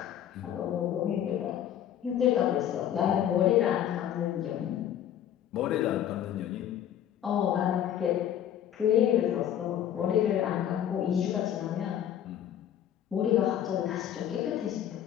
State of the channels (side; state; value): right; quieter; 10.4 dB